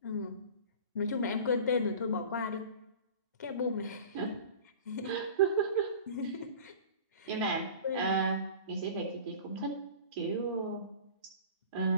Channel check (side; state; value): both; inverted; correlation -0.39